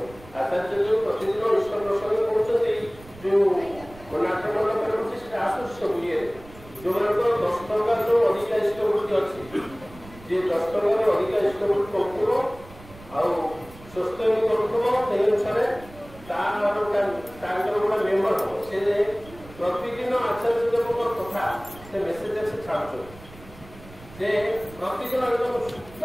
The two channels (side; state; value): right; noise; rumble, 20 dB below the sound